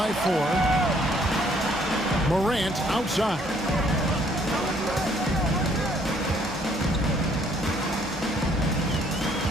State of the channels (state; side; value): normal; both; correlation 0.64